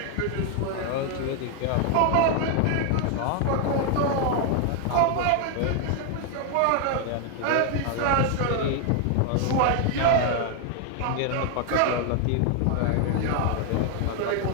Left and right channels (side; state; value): both; different; correlation 0.00